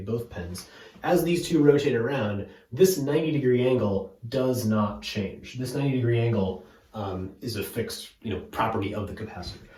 both pens. As these two rotate around, this 90-degree angle does not change. This 90-degree angle is a fixed, property of the capacitor.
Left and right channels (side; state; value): both; identical; correlation 1.00